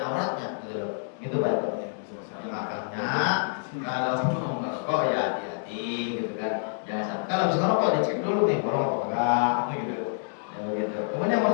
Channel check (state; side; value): silent; right; digital silence